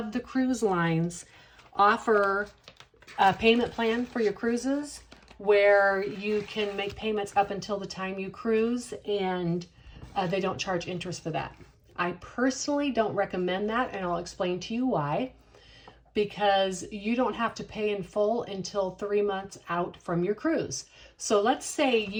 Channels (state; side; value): identical; both; correlation 1.00